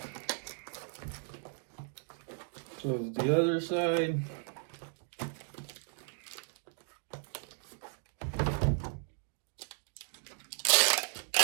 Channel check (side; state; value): left; silent; 54 dB below the other